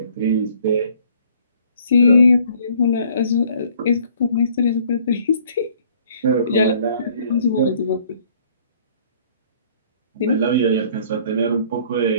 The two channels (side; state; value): both; inverted; correlation -0.58